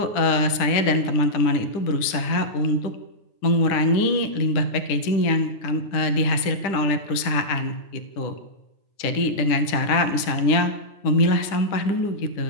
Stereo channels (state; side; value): late; right; 10 ms